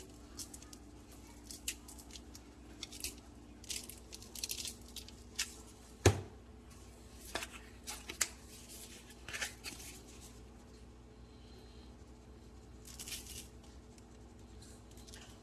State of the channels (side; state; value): both; identical; correlation 1.00